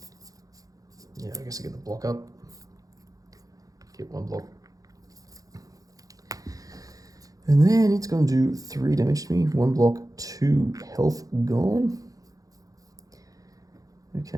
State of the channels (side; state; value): left; late; 0.17 ms